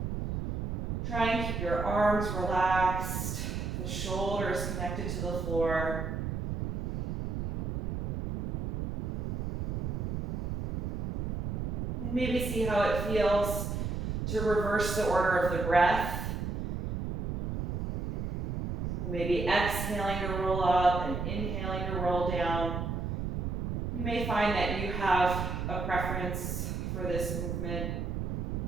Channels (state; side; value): noise; right; rumble, 2 dB below the sound